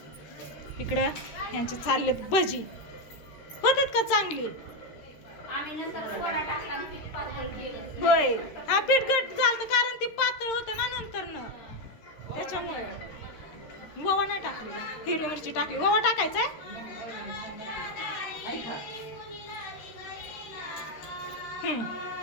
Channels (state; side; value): late; right; 13 ms